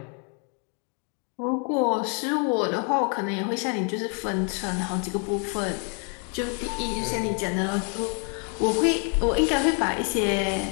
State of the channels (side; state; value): right; quieter; 39.4 dB